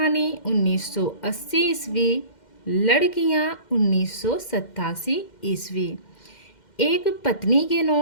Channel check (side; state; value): right; late; 2.1 ms